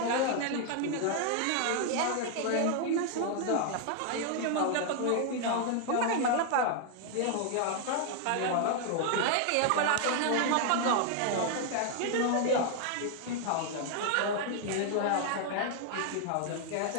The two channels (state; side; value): different; both; correlation 0.00